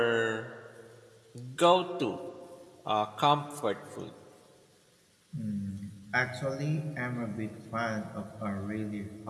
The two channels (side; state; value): both; identical; correlation 1.00